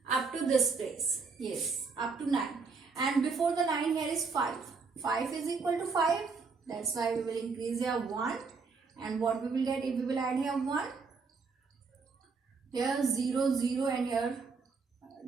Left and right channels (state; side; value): quieter; left; 4.7 dB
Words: up to this place. Yes, up to 9. And before the 9 here is 5. 5 is equal to 5. That's why we will increase here 1. And what we will get if we will add here 1? Here 0, 0 and here